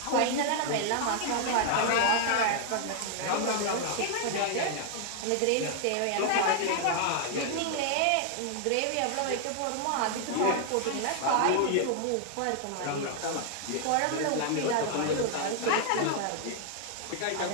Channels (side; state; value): both; different; correlation 0.00